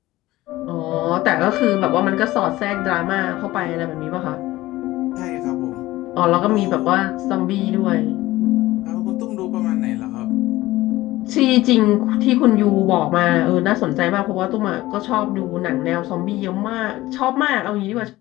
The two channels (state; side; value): quieter; right; 17.4 dB